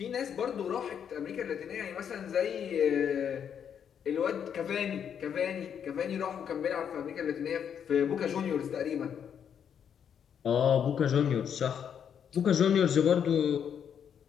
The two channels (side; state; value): right; quieter; 8.2 dB